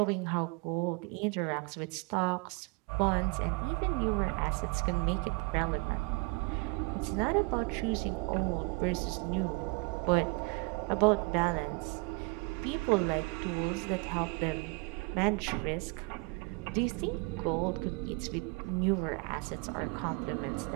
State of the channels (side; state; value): left; quieter; 29.9 dB